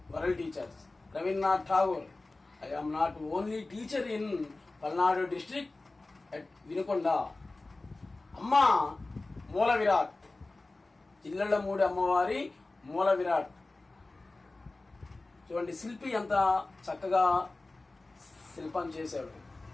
World Teachers. Rabindranath Tagore. I am not only teacher in Palnadu district at Vinukonda. Amma Moola Virat. Jillallamudi అమ్మవారి మూల విరాట్. చూడండి శిల్పి ఎంత చక్కగా శిల్పం చేశాడు.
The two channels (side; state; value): right; quieter; 3.2 dB